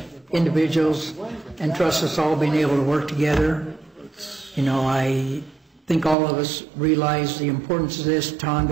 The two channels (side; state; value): left; drops out; at 6.2 s